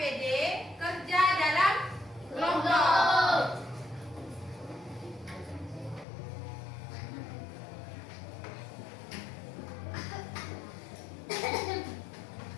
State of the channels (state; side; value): drops out; right; at 6.1 s